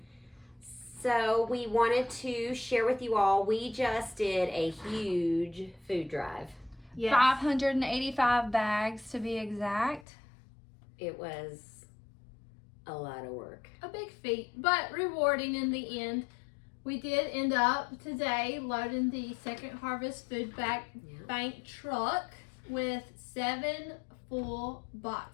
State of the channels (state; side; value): drops out; right; at 10.1 s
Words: So we wanted to share with you all, we just did a huge food drive. Yes. 585 bags to be exact. It was a lot of work. A big feat, but rewarding in the end. We did end up today loading the Second Harvest Food Bank truck with 7 full